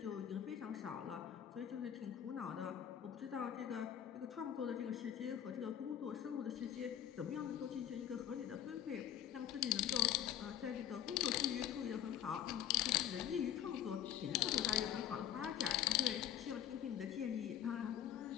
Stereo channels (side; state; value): right; quieter; 10.3 dB